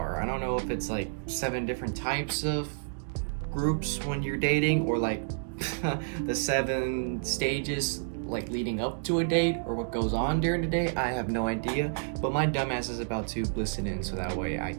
I don't know if it's like 7 different types of groups when you're dating, or like the 7 stages like leading up to a date, or what goes on during the date. I have no idea, but my dumbass is about to listen in so that way I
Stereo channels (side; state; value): left; silent; digital silence